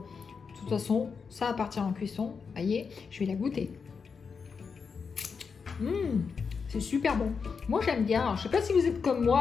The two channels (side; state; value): right; quieter; 5.6 dB